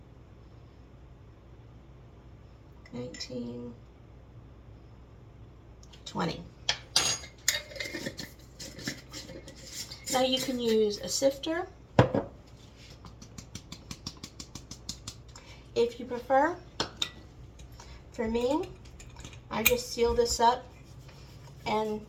$19, $20. Now you can use a sifter if you prefer. For me, I just seal this up and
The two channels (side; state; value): both; identical; correlation 1.00